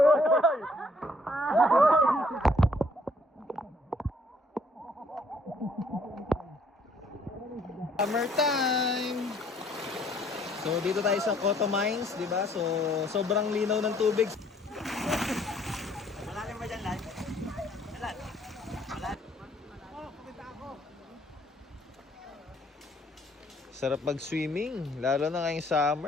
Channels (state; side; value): normal; both; correlation 0.63